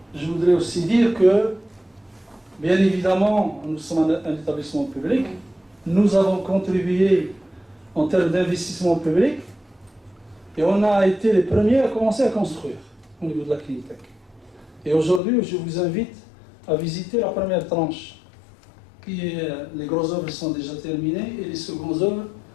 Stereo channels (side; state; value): right; drops out; at 15.2 s